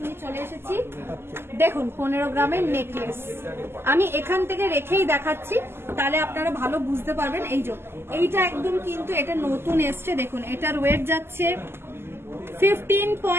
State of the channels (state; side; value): late; left; 0.12 ms